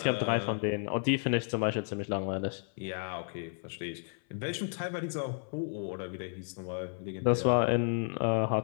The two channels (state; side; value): silent; right; 56 dB below the other